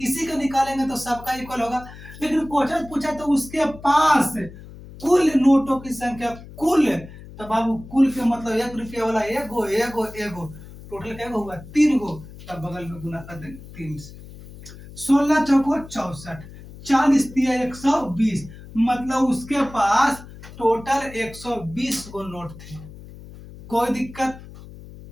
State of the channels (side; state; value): left; noise; hum, 17 dB below the sound